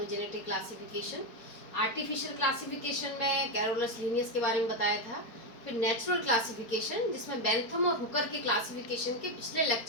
classification. Artificial classification में कैरोलस लीनियस के बारे में बताया था। फिर नेचुरल क्लासिफिकेशन जिसमें बेंथम और हुकर के क्लासिफिकेशन के पिछले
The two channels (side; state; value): right; late; 4.5 ms